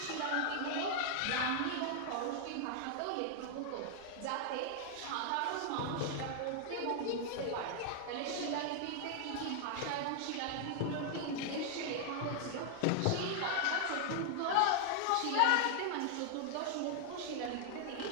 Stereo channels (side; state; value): both; different; correlation 0.00